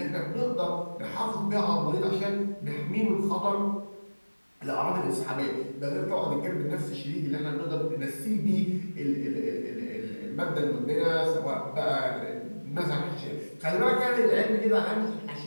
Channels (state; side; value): inverted; both; correlation -1.00